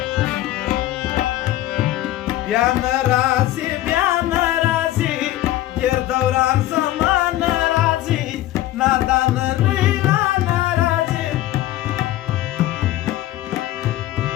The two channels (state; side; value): quieter; right; 14.7 dB